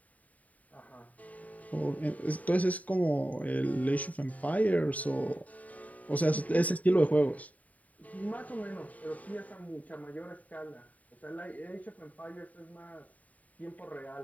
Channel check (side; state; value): right; late; 0.071 ms